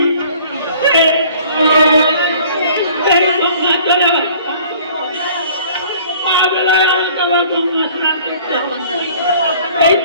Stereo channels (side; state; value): both; inverted; correlation -0.52